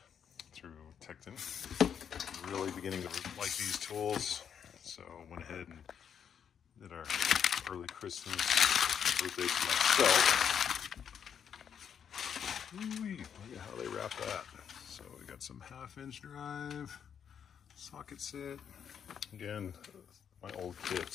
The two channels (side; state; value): right; quieter; 8.0 dB